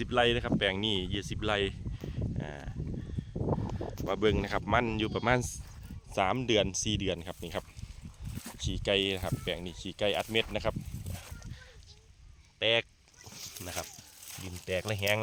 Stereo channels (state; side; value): identical; both; correlation 1.00